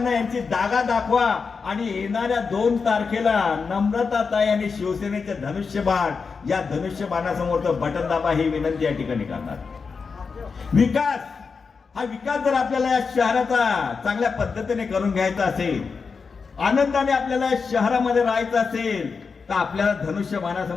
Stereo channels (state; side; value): quieter; right; 5.1 dB